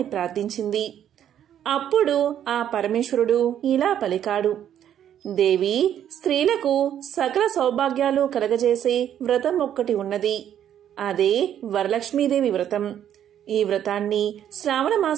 ప్రార్థించింది. అప్పుడు ఆ పరమేశ్వరుడు ఇలా పలికాడు. దేవి, స్త్రీలకు సకల సౌభాగ్యాలు కలగజేసే వ్రతం ఒక్కటి ఉన్నది. అదే వరలక్ష్మీదేవి వ్రతం. ఈ వ్రతాన్ని శ్రావణ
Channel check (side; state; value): left; quieter; 10.2 dB